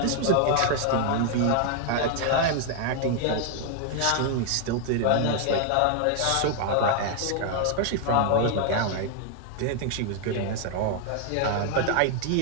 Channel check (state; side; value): different; both; correlation 0.00